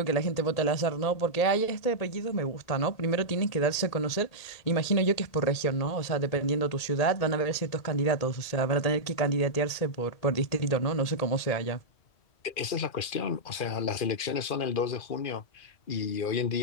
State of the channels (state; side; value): late; right; 1.8 ms